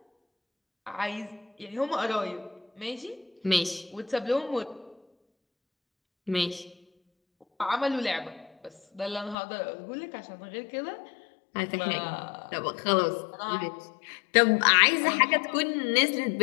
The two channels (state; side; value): drops out; right; at 9.3 s